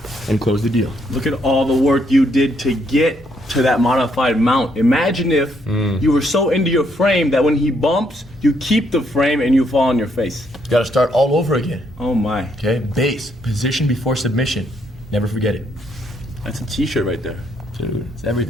and close the deal. Look at all the work you did to get to that modified mount. Imagine if you were so into your frame that when he bumps, you keep the frame and you fall on your face. You gotta start all over again. Oh my. Okay, base, position before submission. Never forget it. That's a t-shirt right there. It's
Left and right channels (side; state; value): both; normal; correlation 0.73